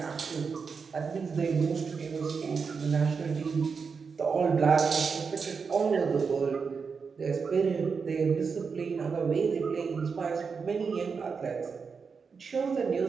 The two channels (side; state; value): left; quieter; 5.5 dB